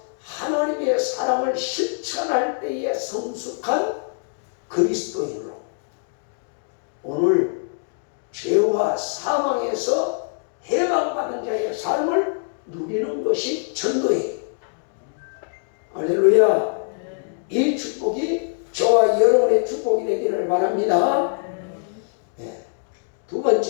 하나님의 사랑을 실천할 때에 성숙한 그리스도인으로 오늘 죄와 사망에서 해방받은 자의 삶을 누리는 것이 전도예요. 할렐루야. 이 축복이 저와 여러분의 축복이 되기를 바랍니다. 네. 두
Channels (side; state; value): right; silent; digital silence